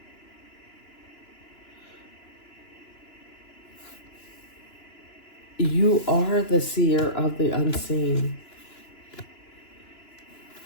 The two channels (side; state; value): right; late; 2.9 ms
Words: You are the seer of the unseen.